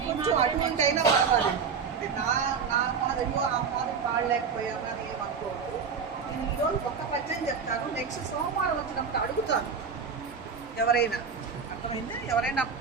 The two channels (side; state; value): left; quieter; 5.9 dB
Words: కొంచెం అటువంటి అయినా పర్వాలేదు. అంటే నా మాదిరిలో ఆ మాదిరి పాడలేకపోయామని ఏమనుకోవద్దు. నేను ఈరోజు ఒక్క పద్యం చెప్తాను, నెక్స్ట్ సోమవారం వచ్చినప్పుడు అడుగుతాను ఎవరైనా. అర్థమైందా? ఎవరైనా